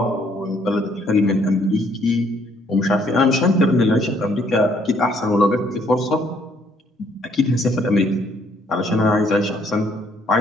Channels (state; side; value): normal; both; correlation 0.66